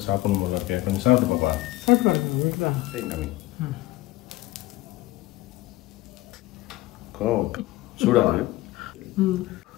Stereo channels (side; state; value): right; quieter; 17.8 dB